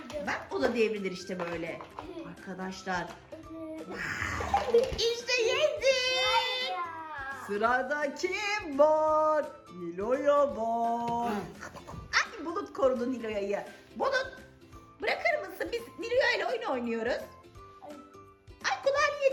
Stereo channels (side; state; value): both; identical; correlation 1.00